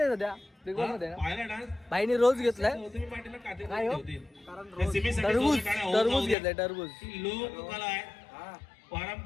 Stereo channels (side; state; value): right; drops out; at 6.4 s